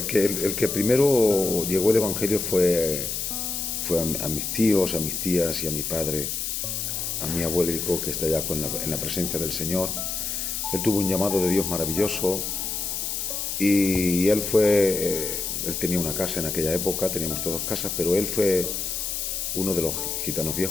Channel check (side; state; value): left; noise; hiss, 3 dB below the sound